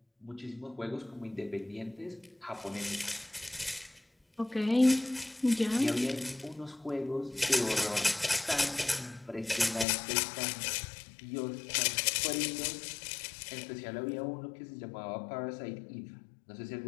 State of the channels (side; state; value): right; drops out; at 9.9 s